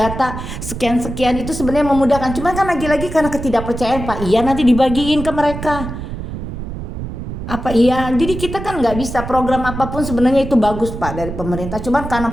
sekian-sekian, itu sebenarnya memudahkan. Cuman kan lagi-lagi karena ketidakpercayaan Pak, iya nanti dibagiin ke mereka. Apa iya? Jadi kita kan nggak bisa, program apapun sebenarnya itu bagus Pak dari pemerintah. Cuman karena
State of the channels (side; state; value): right; noise; rumble, 7 dB below the sound